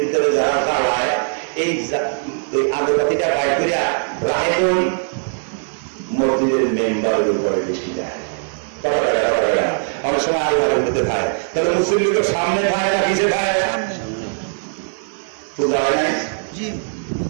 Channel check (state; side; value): silent; left; digital silence